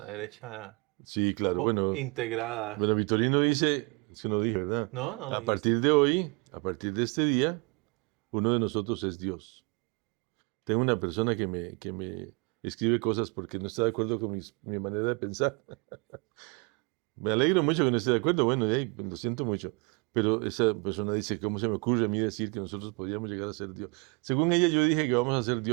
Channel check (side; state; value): left; quieter; 29.7 dB